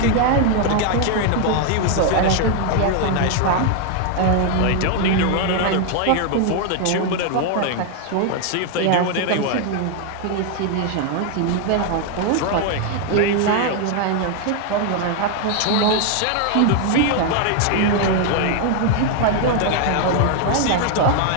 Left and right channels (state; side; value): different; both; correlation 0.01